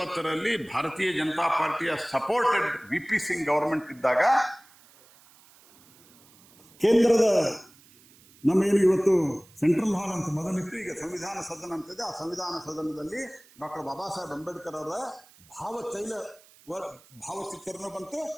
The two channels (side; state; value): right; noise; hiss, 27 dB below the sound